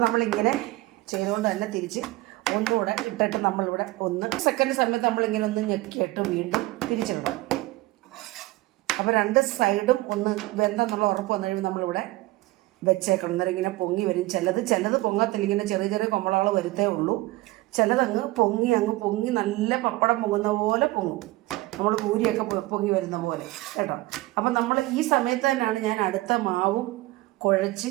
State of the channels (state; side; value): quieter; left; 19.5 dB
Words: നമ്മളിങ്ങനെ ചെയ്തുകൊണ്ട് തന്നെ തിരിച്ച് ഒന്നുകൂടെ ഇട്ടിട്ട് നമ്മളിവിടെ 1 സെക്കൻഡ് സമയത്ത് നമ്മളിങ്ങനെ ഒന്ന് ഞെക്കിയിട്ട് വീണ്ടും തിരിച്ചിടണം. അപ്പോൾ 2 സൈഡും ഒന്ന് വെന്തെന്നുള്ള ഉറപ്പ് വന്നു കഴിയുമ്പോൾ നമ്മളിവിടെ വെച്ചേക്കണം. അന്നേരം ഇങ്ങനെ പൊങ്ങി വരും. ചിലത് പൊങ്ങത്തില്ല, ഇങ്ങനെ ചെറിയ കൊമ്പളകൾ വരുത്തേ ഉള്ളൂ. ചിലതങ്ങ് പൊങ്ങി നല്ല പപ്പടം പൊങ്ങുന്ന പോലെ പൊങ്ങും, നമ്മൾ പൂരിയൊക്കെ പൊങ്ങി വരുന്ന പോലെ കേട്ടോ. അപ്പം നമ്മൾ ഈ സമയത്ത് തന്നെയാണ് ഞാൻ അടുത്ത മാവും കുഴച്ച്